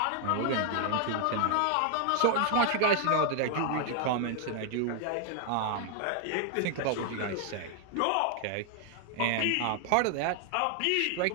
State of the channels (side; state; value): both; different; correlation 0.00